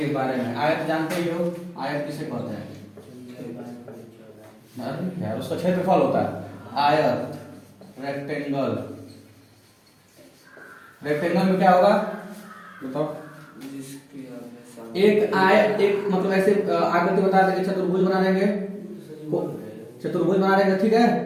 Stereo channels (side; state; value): both; identical; correlation 1.00